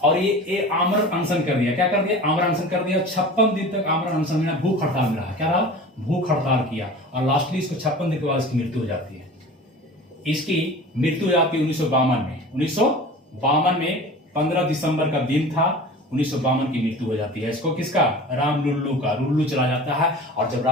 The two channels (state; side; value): normal; both; correlation 0.38